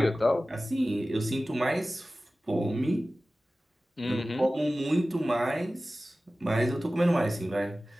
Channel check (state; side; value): normal; both; correlation 0.96